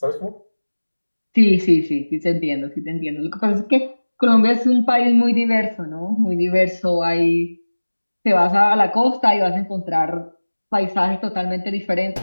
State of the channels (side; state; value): both; inverted; correlation -1.00